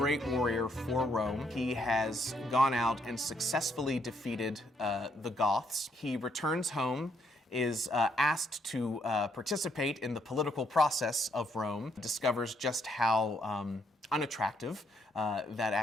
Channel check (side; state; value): both; normal; correlation 0.72